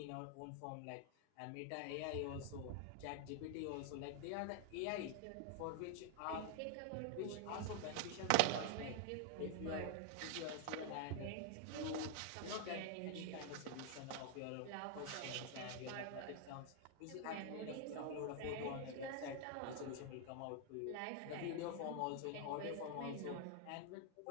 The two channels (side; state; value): both; different; correlation 0.00